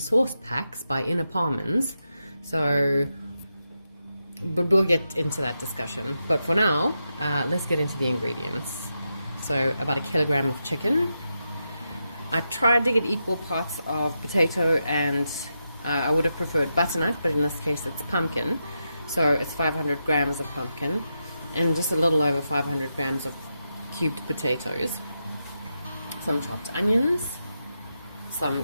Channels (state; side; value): inverted; both; correlation -0.87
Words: packs by Ina Paarmans. So, but we'll get into that discussion. But for now, let's get into the ingredients. So about 1 kilogram of chicken. I tried to get equal parts of potato and I would have preferred butternut, but in this case it's pumpkin. So it's 500 grams of pumpkin and just a little over 500 grams of cubed potatoes. Some chopped onions,